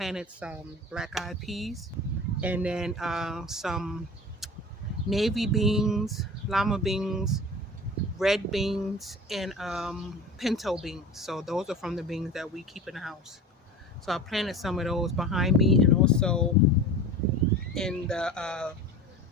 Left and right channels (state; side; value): normal; both; correlation 0.35